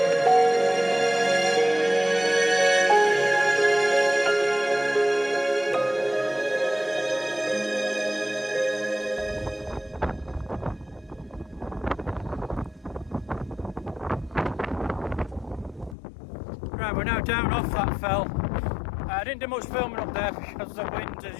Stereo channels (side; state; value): right; drops out; at 16.0 s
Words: Right, we're now down off that fell. I didn't do much filming up there because the wind,